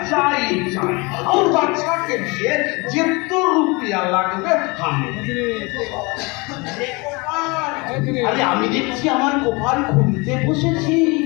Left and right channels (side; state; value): right; quieter; 26.9 dB